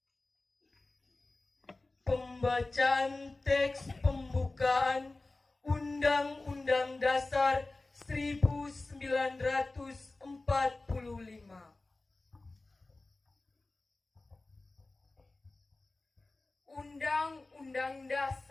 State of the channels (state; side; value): quieter; right; 3.2 dB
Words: Pembacaan teks pembukaan Undang-Undang Dasar 1945. Undang-Undang